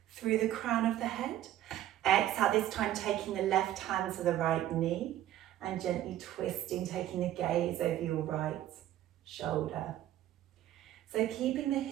through the crown of the head. Exhale, this time taking the left hand to the right knee and gently twisting, taking the gaze over your right shoulder. So keeping the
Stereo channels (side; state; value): left; quieter; 13.0 dB